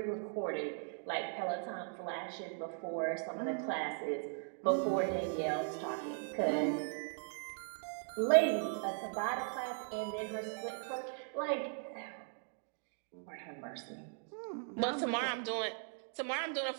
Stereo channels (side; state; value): left; silent; 52 dB below the other